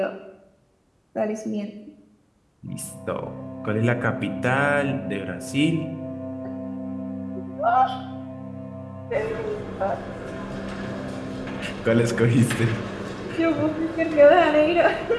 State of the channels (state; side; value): identical; both; correlation 1.00